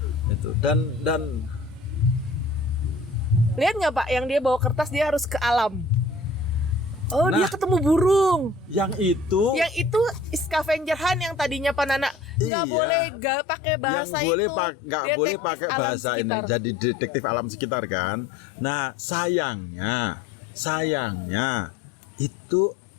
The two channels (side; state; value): right; drops out; at 12.5 s